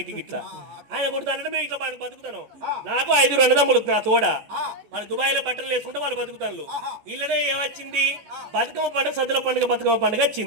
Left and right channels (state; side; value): late; left; 14 ms